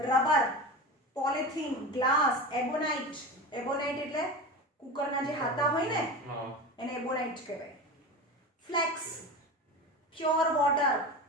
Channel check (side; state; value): both; normal; correlation 0.27